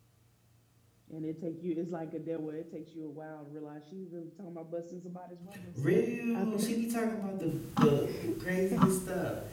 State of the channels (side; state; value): both; identical; correlation 1.00